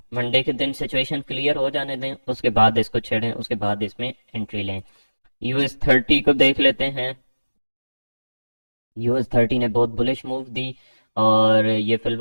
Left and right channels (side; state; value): both; inverted; correlation -1.00